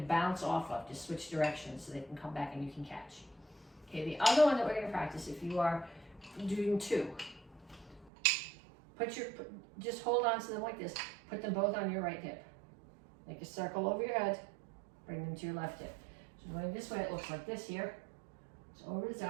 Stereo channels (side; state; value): left; drops out; at 8.1 s